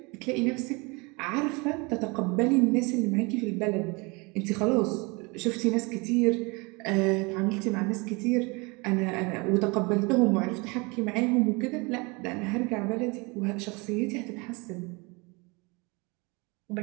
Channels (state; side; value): quieter; left; 27.8 dB